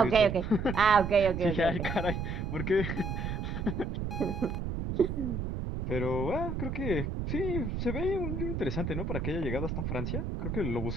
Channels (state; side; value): noise; right; rumble, 3 dB below the sound